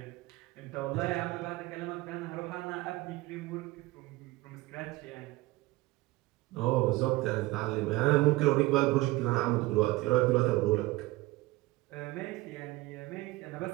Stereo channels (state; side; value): quieter; left; 19.8 dB